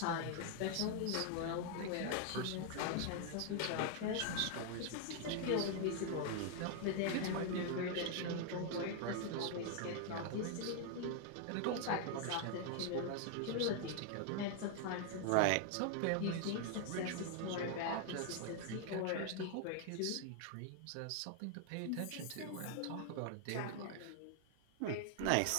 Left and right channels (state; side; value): different; both; correlation 0.00